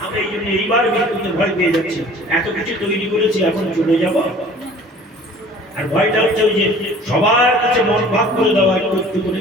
আমরা এই জন্য এইবার মৃত্যুতে ভয় পেয়ে যাচ্ছি। এত কিছু তৈরি করেছি, এখন চলে যাব। আর ভয়টা হচ্ছে ওই যে সবার কাছে মন ভাগ করে দেওয়া, একটু একটু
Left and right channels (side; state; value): both; normal; correlation 0.48